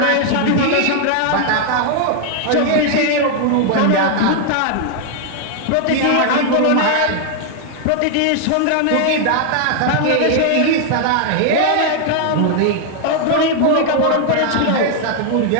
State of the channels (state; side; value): different; both; correlation 0.00